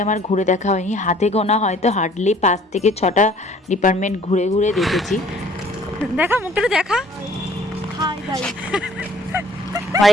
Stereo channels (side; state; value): both; normal; correlation 0.56